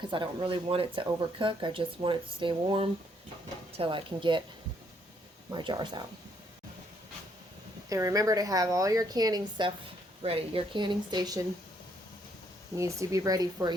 I don't really want it to overcook. I just want it to stay warm until I can get my jars out. And remember to have all your canning stuff ready. Your canning station needs to be ready for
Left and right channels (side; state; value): both; normal; correlation 0.70